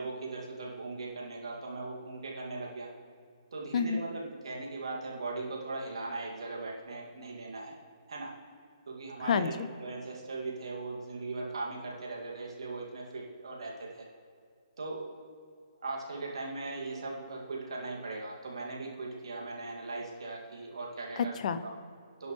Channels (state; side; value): inverted; both; correlation -0.70